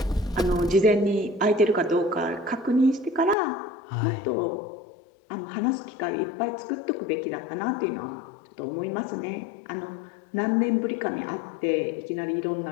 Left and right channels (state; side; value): drops out; right; at 3.4 s